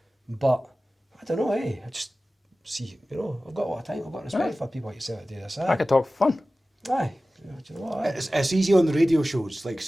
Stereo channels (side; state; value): both; normal; correlation 0.96